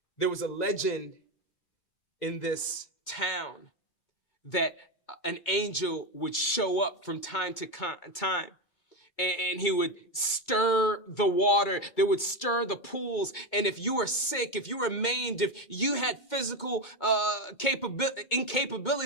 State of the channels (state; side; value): late; right; 2.3 ms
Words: There was a legend in this town that an angel would show up from time to time. And he would stir the water. They would stir the pools. And if you were sick, if you were maimed, if you had physical